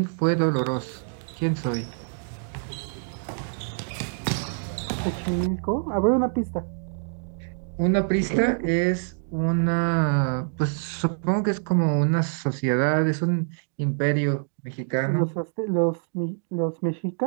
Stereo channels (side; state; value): left; silent; 61 dB below the other